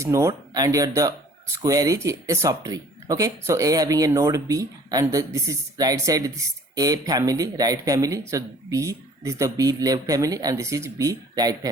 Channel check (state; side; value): normal; both; correlation 0.53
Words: node and here the square is a subtree. Okay, so A having a node B, and this is right side, this is A family, right family. So B, this is the B left family, and this is B right